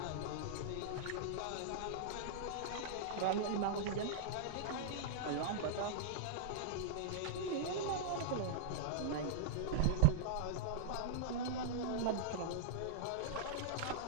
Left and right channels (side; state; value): both; different; correlation -0.02